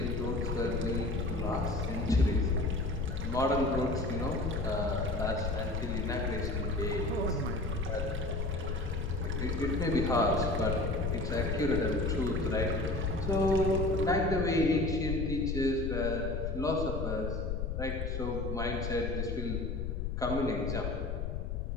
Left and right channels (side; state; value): left; noise; rumble, 2 dB below the sound